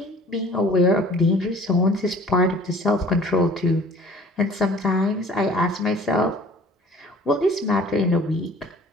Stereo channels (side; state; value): both; normal; correlation 0.50